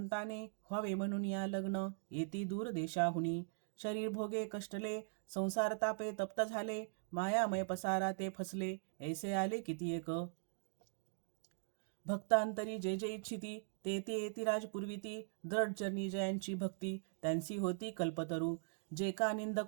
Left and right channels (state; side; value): silent; left; digital silence